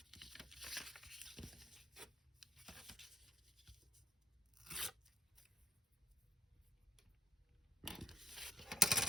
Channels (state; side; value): normal; both; correlation 0.66